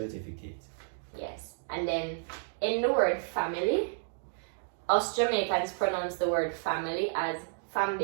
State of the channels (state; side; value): silent; left; digital silence